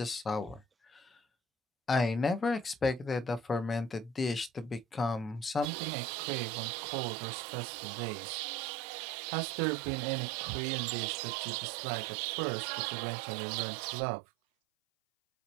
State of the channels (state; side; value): drops out; left; at 5.7 s